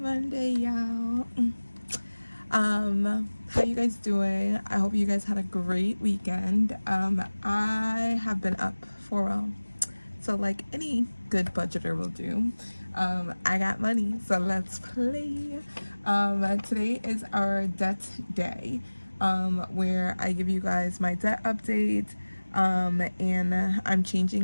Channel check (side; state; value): both; inverted; correlation -1.00